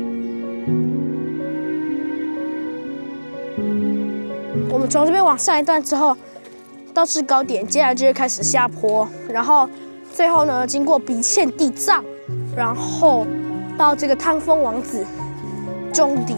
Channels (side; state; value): both; inverted; correlation -1.00